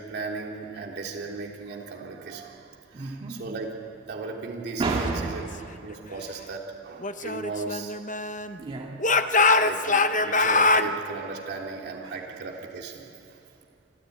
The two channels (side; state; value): both; normal; correlation -0.18